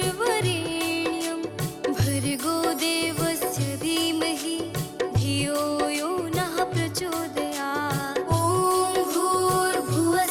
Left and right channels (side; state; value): both; identical; correlation 1.00